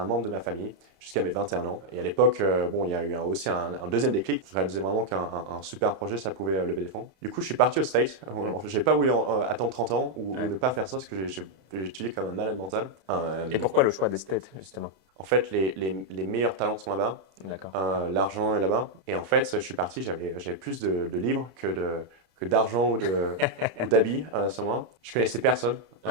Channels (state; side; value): late; left; 32 ms